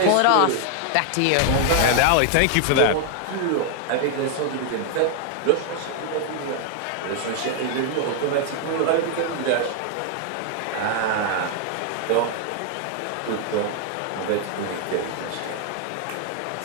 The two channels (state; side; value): different; both; correlation 0.00